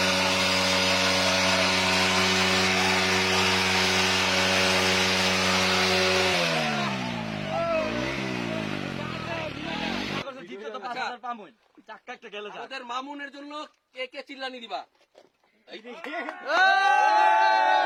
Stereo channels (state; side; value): identical; both; correlation 1.00